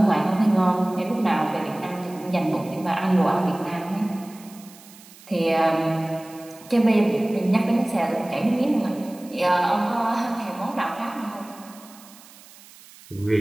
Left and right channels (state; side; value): noise; right; hiss, 22 dB below the sound